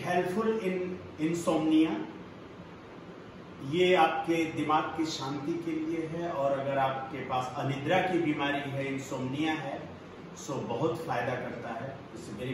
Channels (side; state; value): both; identical; correlation 1.00